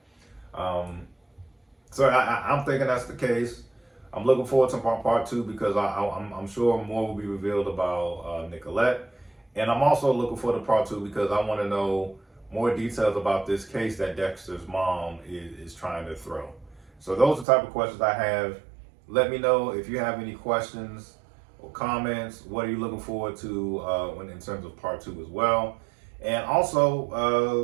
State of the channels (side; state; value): left; drops out; at 17.4 s